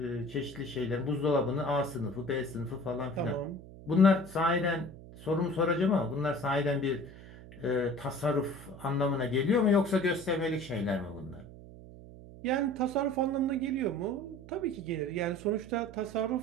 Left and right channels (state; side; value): noise; right; hum, 17 dB below the sound